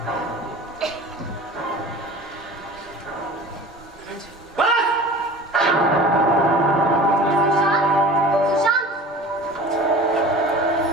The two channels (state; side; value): normal; both; correlation 0.40